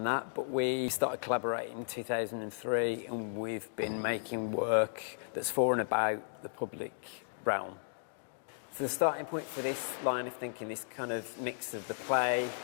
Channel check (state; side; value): silent; right; digital silence